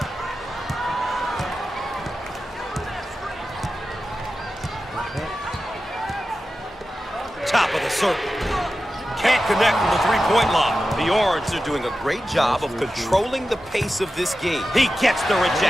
Top of the circle. Can't connect from the three-point line. The Orange are doing a great job of controlling the pace of this game. He gets the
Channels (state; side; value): normal; both; correlation 0.93